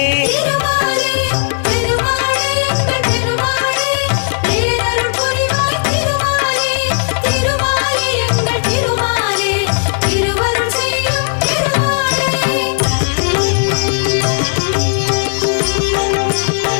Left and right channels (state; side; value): silent; right; digital silence